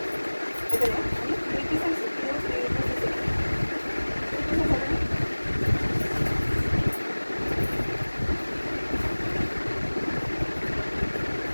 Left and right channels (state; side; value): inverted; both; correlation -1.00